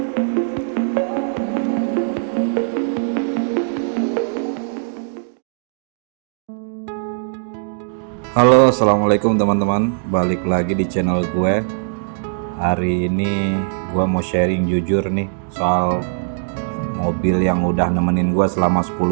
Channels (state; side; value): silent; left; digital silence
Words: halo, assalamualaikum teman-teman. Balik lagi di channel gue. Hari ini gue mau sharing jujur nih soal mobil yang udah nemenin gue selama